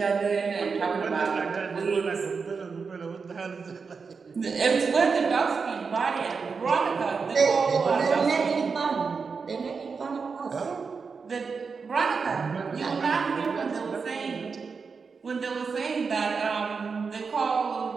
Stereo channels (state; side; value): quieter; left; 5.2 dB